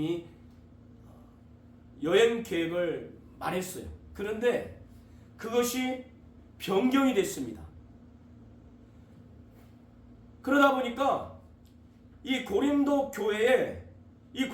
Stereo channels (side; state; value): both; identical; correlation 1.00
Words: 여행 계획을 말했어요. 그런데 그것이 변경이 됐습니다. 그러다 보니까 이 고린도 교회에 이